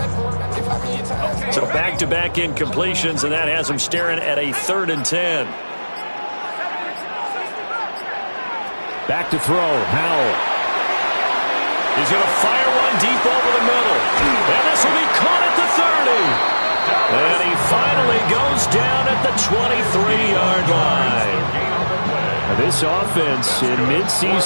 So back-to-back incompletions, and that has him staring at a 3rd and 10. Back to throw, Howell. He's going to fire one deep over the middle. And this will be caught at the 30. And he finally goes down at the 23-yard line. Now this offense in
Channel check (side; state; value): both; inverted; correlation -1.00